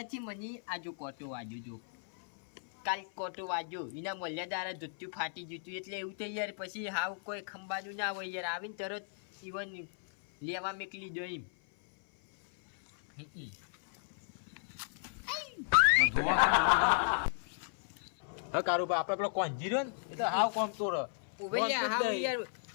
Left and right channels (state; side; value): silent; right; 55 dB below the other